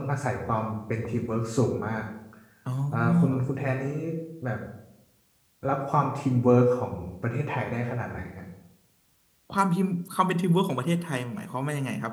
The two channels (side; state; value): both; identical; correlation 1.00